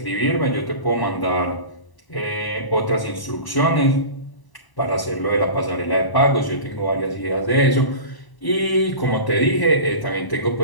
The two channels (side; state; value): right; late; 1.0 ms